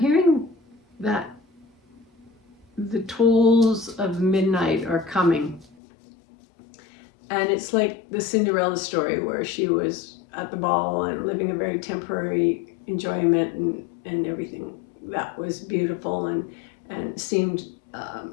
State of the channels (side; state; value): right; drops out; at 5.8 s